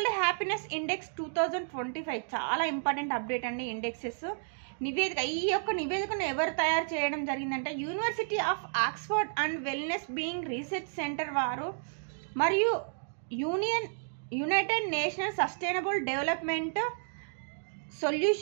హ్యాపీనెస్ ఇండెక్స్ 2025. చాలా ఇంపార్టెంట్ అప్డేట్ అండి. ఇండెక్సెస్ నివేదిక. ఈ యొక్క నివేదికను ఎవరు తయారు చేయడం జరిగిందంటే university of Oxford and wellness being research centre వారు మరియు united national sustainable development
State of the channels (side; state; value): left; silent; digital silence